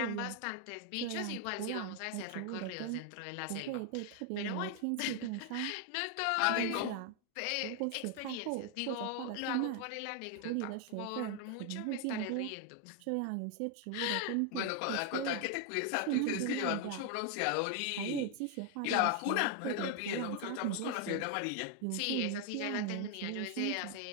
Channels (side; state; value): both; different; correlation 0.01